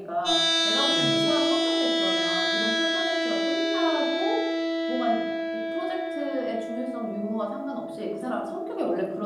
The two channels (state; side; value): identical; both; correlation 1.00